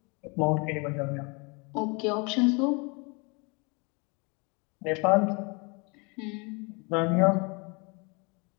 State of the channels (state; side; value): quieter; right; 31.1 dB